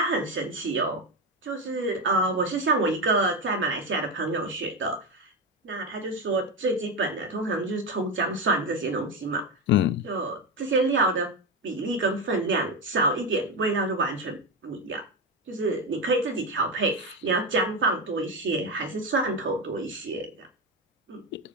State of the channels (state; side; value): normal; both; correlation 0.13